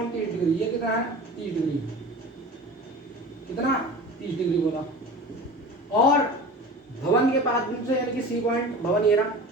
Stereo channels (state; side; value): normal; both; correlation 0.36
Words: 30 डिग्री। ये कितना है, 30 डिग्री। कितना, 30 डिग्री बोला। और भवन के पाद बिंदु से यानी कि सी पॉइंट, भवन ये रहा,